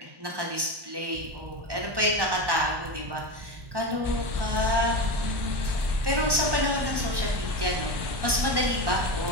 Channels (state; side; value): late; left; 1.1 ms